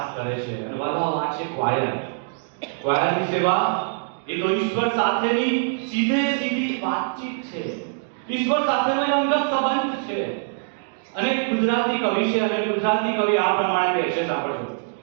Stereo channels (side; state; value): left; silent; digital silence